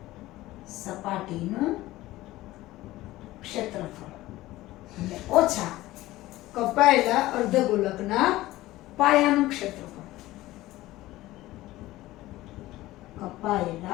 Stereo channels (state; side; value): quieter; right; 17.1 dB